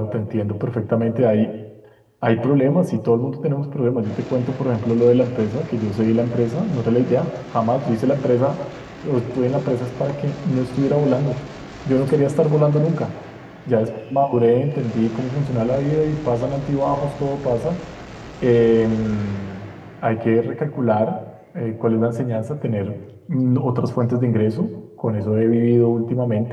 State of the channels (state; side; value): identical; both; correlation 1.00